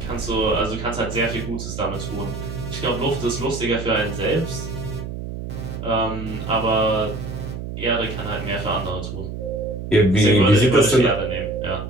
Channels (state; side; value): noise; right; hum, 7 dB below the sound